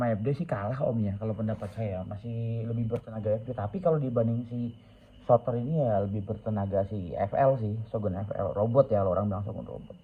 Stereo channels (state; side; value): identical; both; correlation 1.00